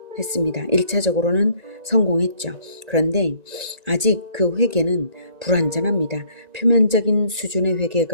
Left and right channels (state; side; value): late; right; 1.9 ms